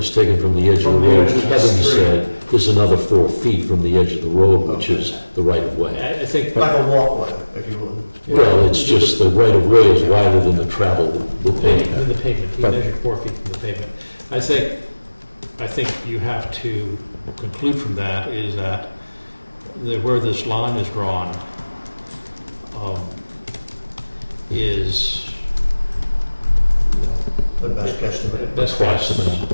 taken from the edge of the From the road. edge of the Kevin street. said there's another 4 feet from the edge of the road, which is the right of way. I think. Like a walkway, if you will. Well, it's just the right of way is wider than the travel with pavement. In the pavement, he measured 4 feet from the pavement. I think you have to conclude from that is that where this line is drawn is The best guesstimate. best Approximate.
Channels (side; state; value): both; inverted; correlation -1.00